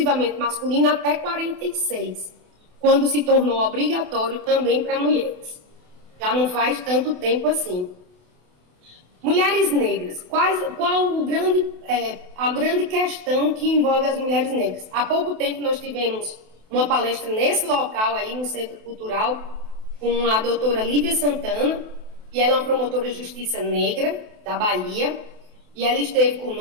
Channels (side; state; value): left; late; 28 ms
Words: masculino até 46, quando se tornou obrigatório também para mulheres. Já não faz tanto tempo assim. Mulheres negras, qual a grande questão que envolve as mulheres negras? Há pouco tempo nós tivemos uma palestra nesse local aí no Centro Cultural com a doutora Lívia Santana, e ela é uma promotora de justiça negra da Bahia, e ela esteve